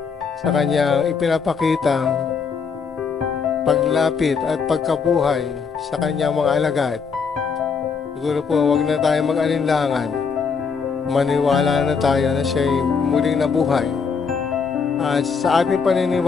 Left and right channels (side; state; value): right; quieter; 5.7 dB